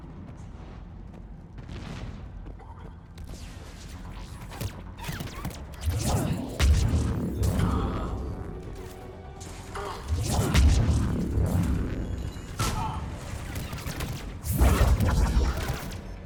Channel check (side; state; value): both; identical; correlation 1.00